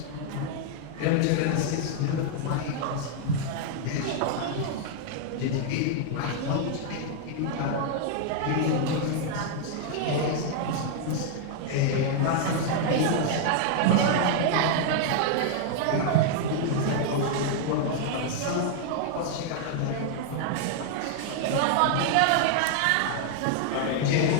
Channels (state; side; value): different; both; correlation 0.00